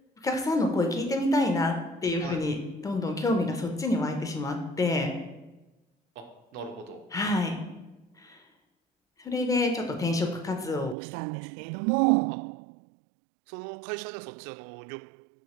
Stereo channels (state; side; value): drops out; left; at 11.0 s